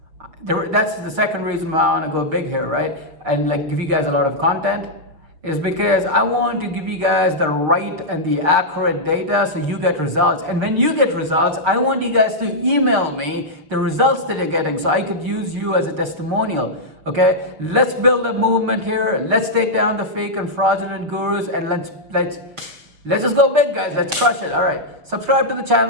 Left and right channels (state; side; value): late; left; 6.3 ms